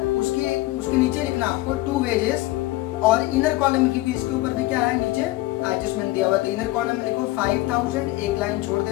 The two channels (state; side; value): quieter; right; 18.4 dB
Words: उसके नीचे लिखना आपको टू वेजेस, और इनर कॉलम में, क्योंकि इसके ऊपर भी क्या है, नीचे एडजस्टमेंट दिया हुआ, तो इनर कॉलम में लिखो 5,000, एक लाइन छोड़